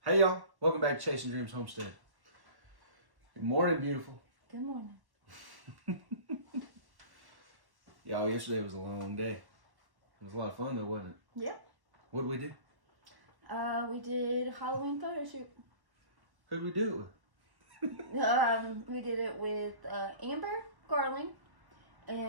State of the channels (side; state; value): left; late; 1.1 ms